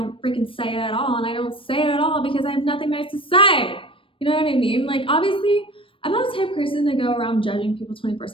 freaking say it at all. And I don't say it at all because I have nothing nice to say. You know what I mean? Like obviously I'm not the type of person to go around judging people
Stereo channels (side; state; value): right; late; 0.25 ms